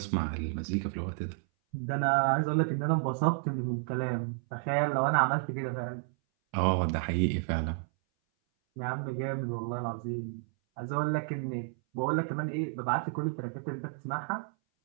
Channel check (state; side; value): silent; left; 57 dB below the other